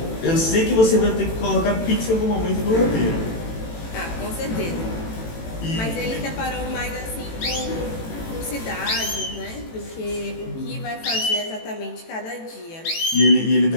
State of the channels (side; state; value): right; late; 18 ms